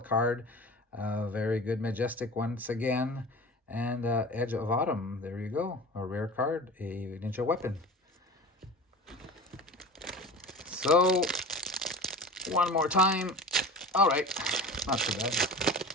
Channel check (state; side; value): normal; both; correlation 0.35